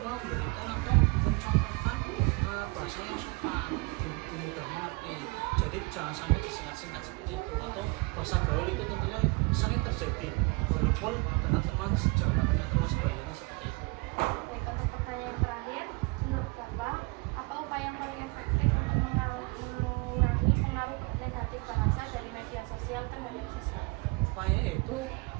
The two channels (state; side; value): quieter; left; 26.7 dB